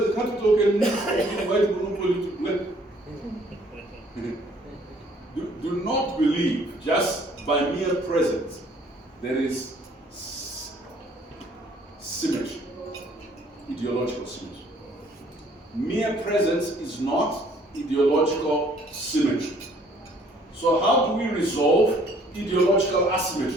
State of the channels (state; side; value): normal; both; correlation 0.60